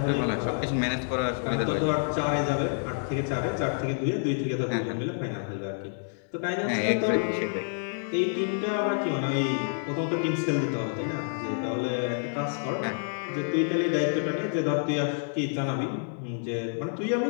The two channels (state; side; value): silent; right; digital silence